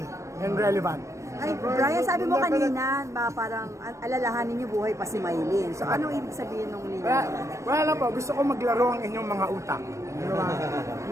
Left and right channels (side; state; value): left; late; 0.15 ms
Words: and relevant. Ay, Brian, sabi mo kanina, parang alalahanin niyo buhay pa si Maylin. So anong ibig sabihin ng linya? Wala po, gusto ko maglaro ang inyong mga utak.